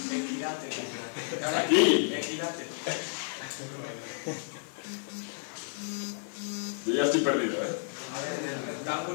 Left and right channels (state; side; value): silent; right; digital silence